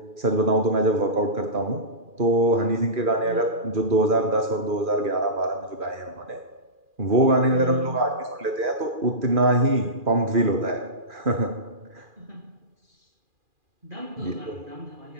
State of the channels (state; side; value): late; left; 2.4 ms